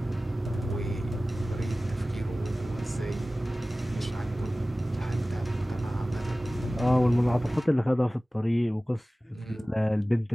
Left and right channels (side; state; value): both; normal; correlation 0.97